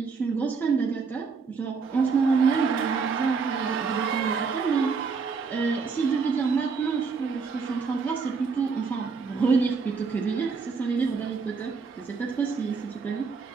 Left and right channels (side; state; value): left; quieter; 5.1 dB